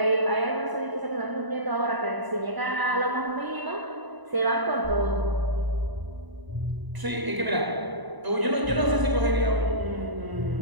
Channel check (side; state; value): left; late; 1.0 ms